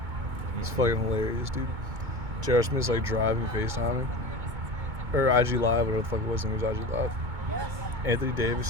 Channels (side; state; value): left; late; 2.2 ms